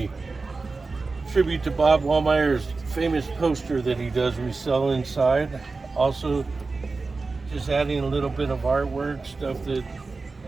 tribute to Bob Waldmire's famous poster that he does resell inside. Also, just adding a little bit of artwork, stuff that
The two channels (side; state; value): left; quieter; 3.9 dB